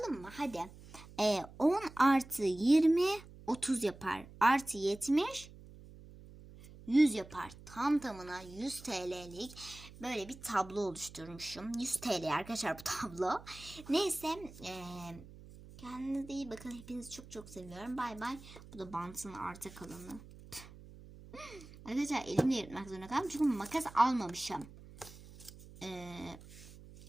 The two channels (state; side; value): noise; right; hum, 18 dB below the sound